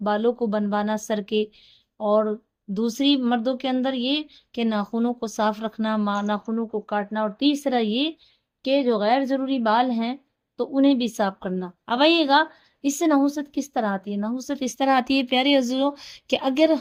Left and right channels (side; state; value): both; identical; correlation 1.00